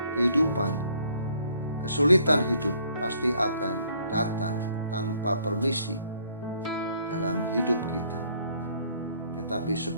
kesulitan hidup pasti akan datang tanpa permisi dalam hidup kita. Tetapi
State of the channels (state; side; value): inverted; both; correlation -0.63